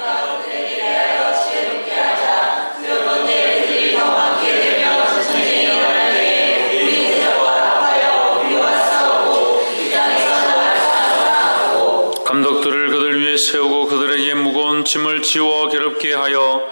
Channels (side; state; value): both; inverted; correlation -1.00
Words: 감독들을 그들 위에 세우고 그들에게 무거운 짐을 지워 괴롭게 하여